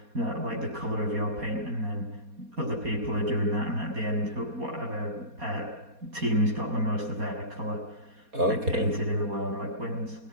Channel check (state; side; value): late; left; 4.2 ms